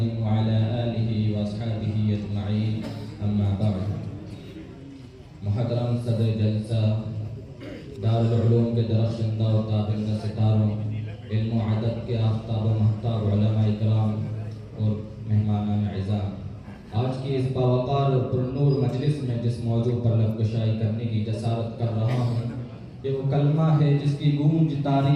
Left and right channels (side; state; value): both; identical; correlation 1.00